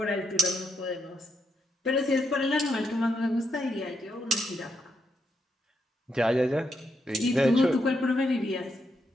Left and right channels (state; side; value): normal; both; correlation 0.80